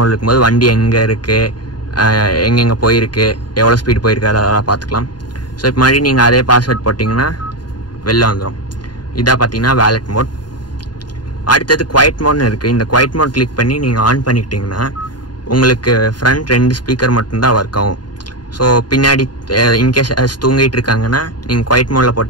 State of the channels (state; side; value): late; right; 0.70 ms